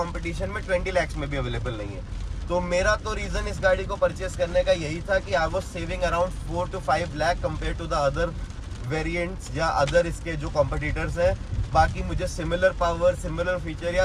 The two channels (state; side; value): identical; both; correlation 1.00